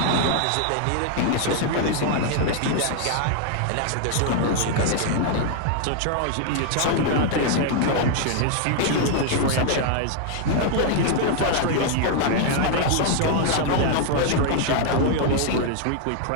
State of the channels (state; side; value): different; both; correlation 0.00